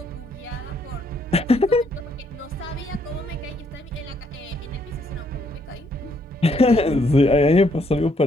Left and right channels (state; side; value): normal; both; correlation 0.71